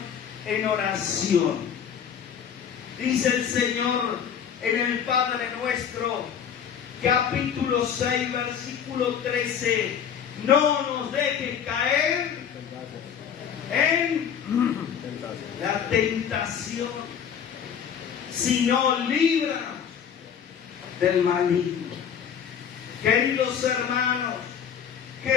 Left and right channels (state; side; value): quieter; right; 8.1 dB